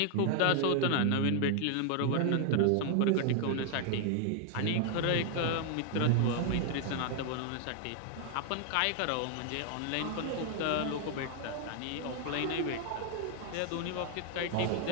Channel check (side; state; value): both; different; correlation 0.00